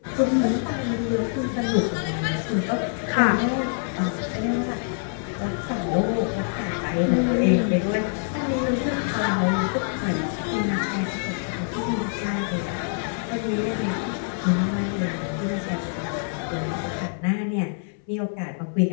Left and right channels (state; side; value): silent; right; 62 dB below the other